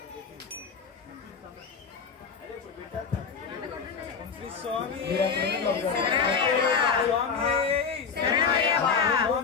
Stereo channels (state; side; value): quieter; right; 5.9 dB